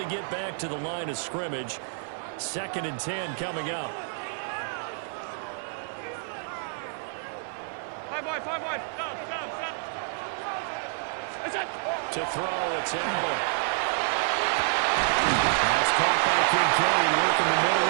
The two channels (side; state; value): left; silent; 56 dB below the other